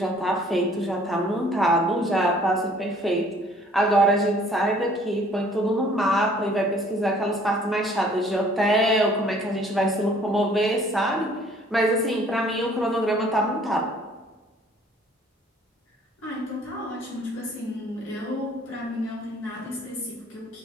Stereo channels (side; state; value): both; normal; correlation 0.57